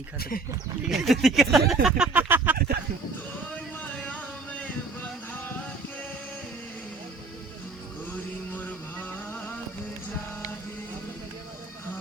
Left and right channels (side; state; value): left; quieter; 3.8 dB